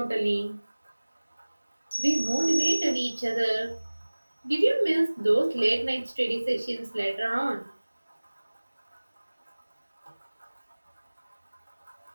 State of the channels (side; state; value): both; inverted; correlation -1.00